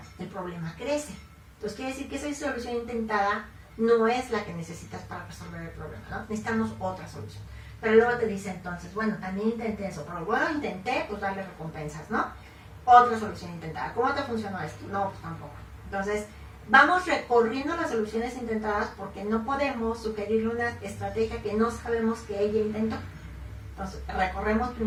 el problema crece. Entonces quiere decir que esa solución intentada no es la que necesitas para resolver el problema, ¿no? Necesitamos otra solución. Pero luego te dice entonces, bueno, también intenté eso, pero bueno, intenté, pues darle recompensas, ¿no? Otra solución intentada. ¿Cómo te funcionó esto? No, pues tampoco. Entonces, vamos recorriendo las soluciones intentadas porque no podemos sugerirle una estrategia que no sabemos que ella intentó. Entonces, recorremos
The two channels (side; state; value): both; identical; correlation 1.00